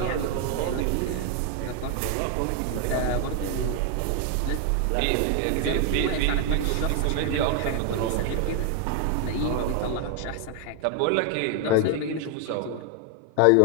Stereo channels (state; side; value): different; both; correlation 0.01